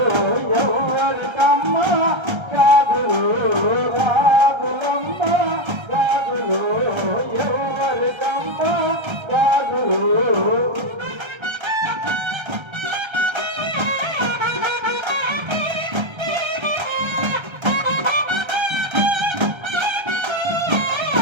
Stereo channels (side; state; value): left; late; 1.3 ms